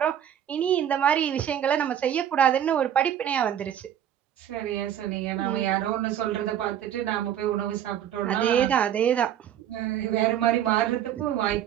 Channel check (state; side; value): quieter; left; 10.2 dB